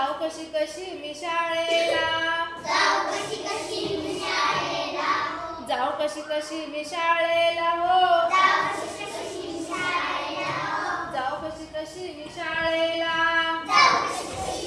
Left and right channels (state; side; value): identical; both; correlation 1.00